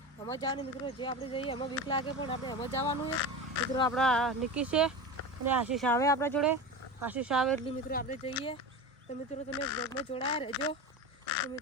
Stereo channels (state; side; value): normal; both; correlation 0.26